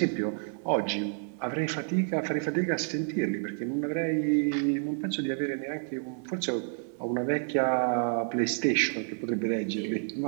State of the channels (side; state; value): left; silent; 55 dB below the other